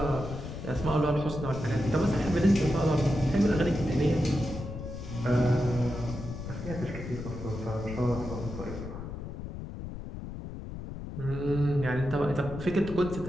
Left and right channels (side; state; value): left; noise; rumble, 9 dB below the sound